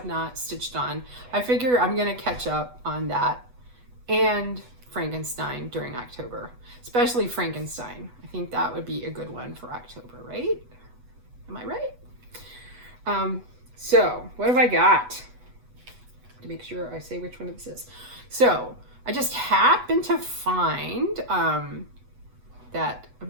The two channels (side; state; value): left; late; 8.1 ms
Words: not stitched on. I figure I'm gonna catch up on that and Frankenstein during October, especially Frankenstein. I think that would be a good one for October, right? Am I right? So what have I got? To make sure I say which one this is. So I just happened to find that